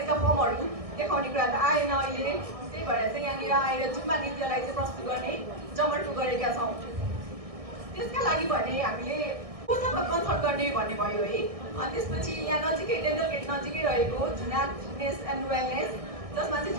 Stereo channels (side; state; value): left; late; 1.6 ms